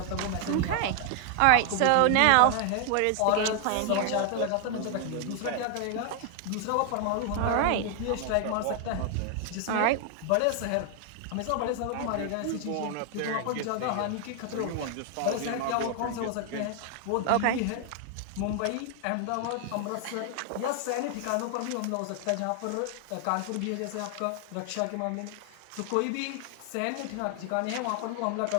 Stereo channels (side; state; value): both; different; correlation 0.00